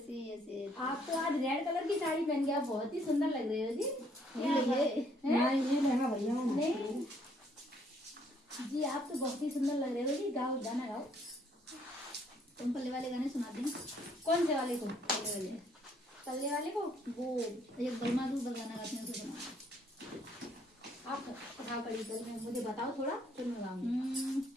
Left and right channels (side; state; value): both; normal; correlation 0.66